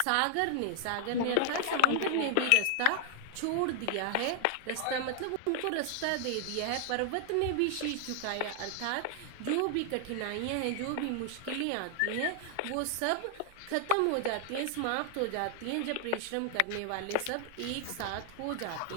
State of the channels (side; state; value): both; different; correlation 0.00